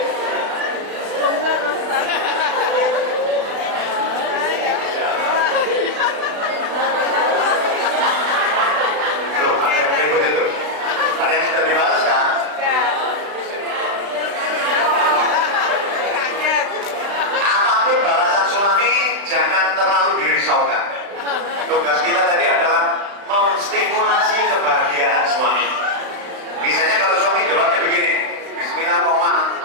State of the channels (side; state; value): left; late; 35 ms